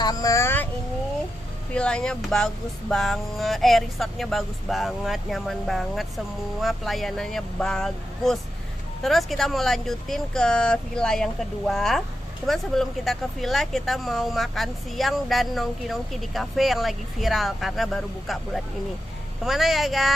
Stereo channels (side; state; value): both; normal; correlation 0.88